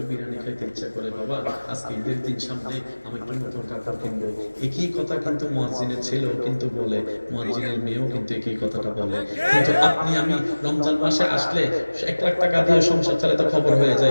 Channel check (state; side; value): inverted; both; correlation -1.00